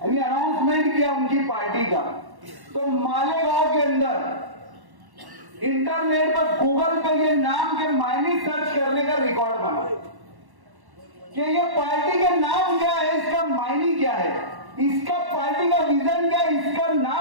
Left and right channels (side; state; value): left; late; 1.1 ms